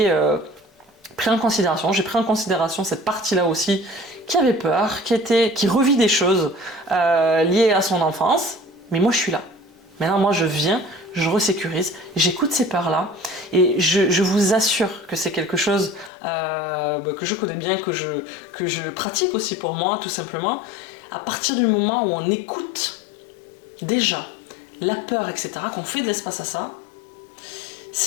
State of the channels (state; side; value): drops out; right; at 16.1 s